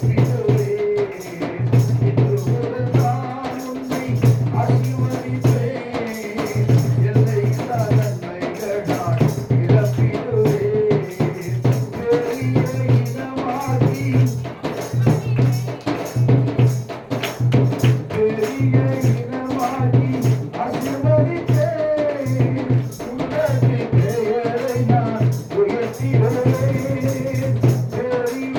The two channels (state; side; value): identical; both; correlation 1.00